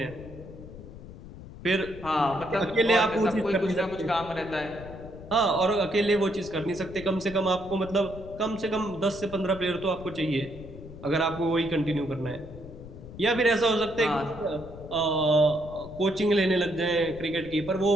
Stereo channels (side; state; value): left; noise; rumble, 15 dB below the sound